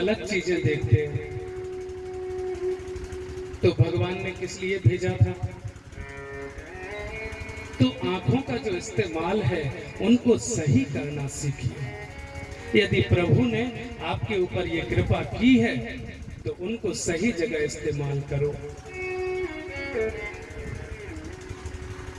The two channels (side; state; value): both; identical; correlation 1.00